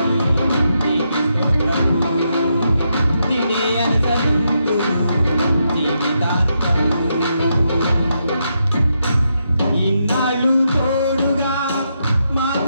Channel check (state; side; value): inverted; both; correlation -0.82